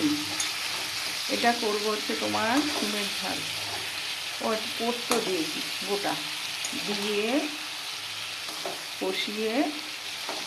এটা করবো হচ্ছে তোমার সিমের ঝাল। পোস্ত দিয়েছি গোটা, দিয়ে কষিয়ে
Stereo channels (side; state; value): both; identical; correlation 1.00